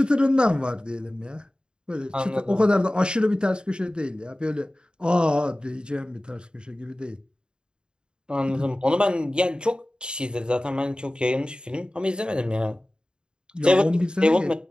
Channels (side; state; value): left; late; 0.050 ms